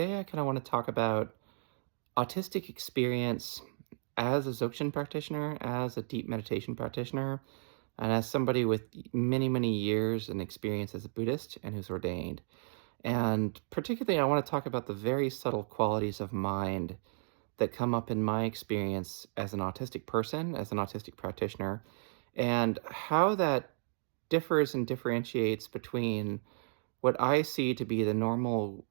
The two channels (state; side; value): silent; left; digital silence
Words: I kind of want to talk about autistic experience as a Dzogchen practitioner, as a deep meditation practitioner, and as somebody with many, many years and experience as a Buddhist and who's ordained. And particularly, I want to talk about the very subtle qualities of mind that come up in my experience as an autistic person, as an autistic practitioner, and how that differs and differentiates between what I see to be the normal